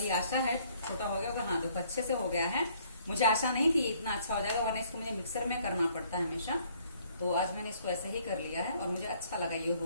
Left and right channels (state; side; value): inverted; both; correlation -0.63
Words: आशा है। छोटा हो गया होगा, हाँ देखो अच्छे से हो गया है। मुझे आशा नहीं थी इतना अच्छा हो जाएगा, वरना इसको मुझे मिक्सर में करना पड़ता है हमेशा। तो आज मैंने इसको ऐसे ही कर लिया है और मुझे अच्छा लगा, ये